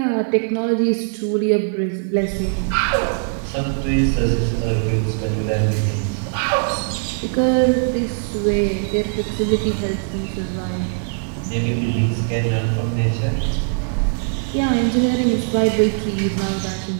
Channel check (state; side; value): silent; left; digital silence